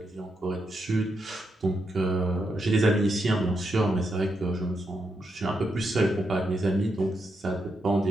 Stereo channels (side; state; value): both; normal; correlation 0.83